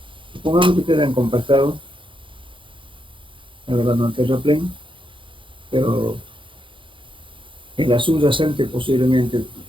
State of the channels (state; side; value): late; left; 0.25 ms